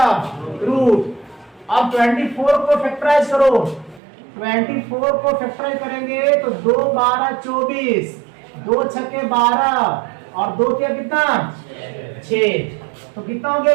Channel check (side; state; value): left; drops out; at 4.0 s